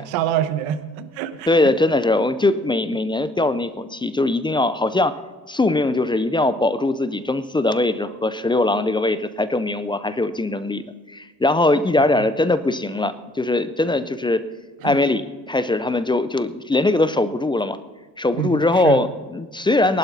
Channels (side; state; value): both; normal; correlation 0.63